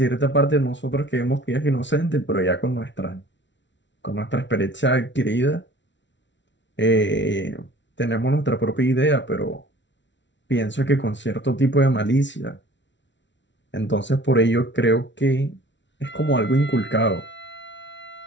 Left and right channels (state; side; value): late; right; 0.53 ms